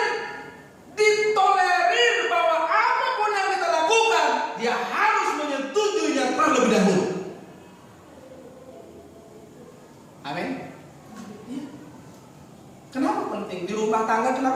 ditolerir bahwa apapun yang kita lakukan, dia harus menyetujuinya terlebih dahulu. Amin. Ya. Kenapa penting? Di rumah tangga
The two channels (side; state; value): both; identical; correlation 1.00